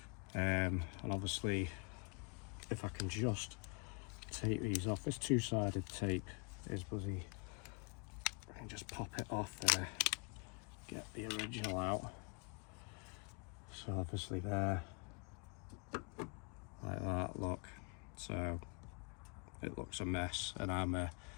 and obviously if I can just take these off, this two-sided tape is bloody, I can just pop it off there, get the original out. So obviously there, like that, look, so it looks a mess, and I'm a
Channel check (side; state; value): right; quieter; 34.9 dB